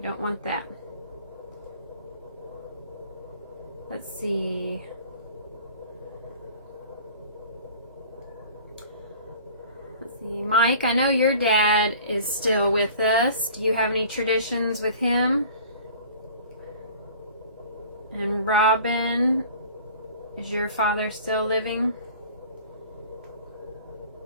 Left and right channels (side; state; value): both; inverted; correlation -0.46